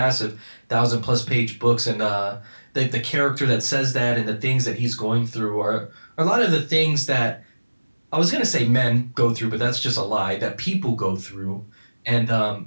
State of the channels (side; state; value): both; inverted; correlation -1.00